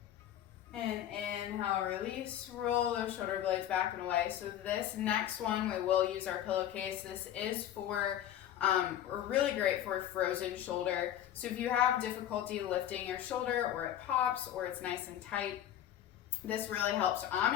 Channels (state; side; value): quieter; right; 11.5 dB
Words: And inhale, release, roll those shoulder blades back and away. So this next one, we will use our pillowcase. This is for, really great for a frozen shoulder. So if you have difficulty lifting your shoulder, or it pops, or it's nice and tight, this really helps. So